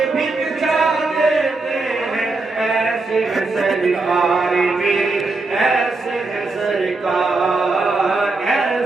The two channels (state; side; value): quieter; left; 3.5 dB